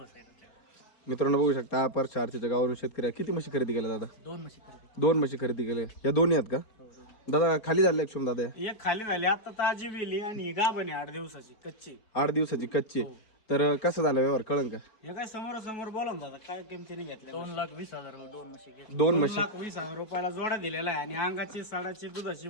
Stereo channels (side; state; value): right; late; 4.6 ms